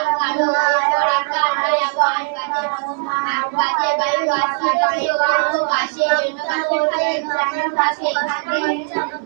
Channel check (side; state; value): left; silent; digital silence